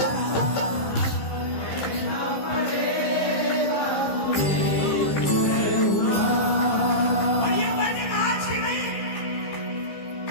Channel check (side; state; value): right; late; 15 ms